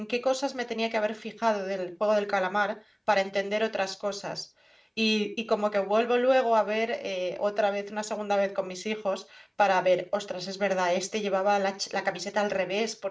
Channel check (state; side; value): identical; both; correlation 1.00